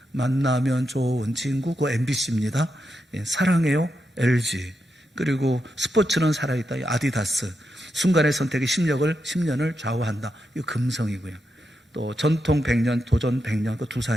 만나면 좋은 친구, 그 MBC입니다. 사랑해요, LG. 그리고 스포츠는 살아있다, 아디다스. 순간의 선택이 10년을 좌우한다, 이 금성이고요. 또 전통 100년, 도전 100년, 그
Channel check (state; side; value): normal; both; correlation 0.85